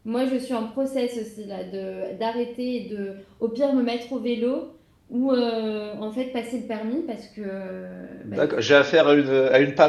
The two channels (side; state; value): both; identical; correlation 1.00